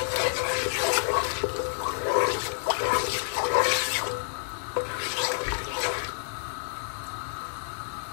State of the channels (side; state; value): right; silent; digital silence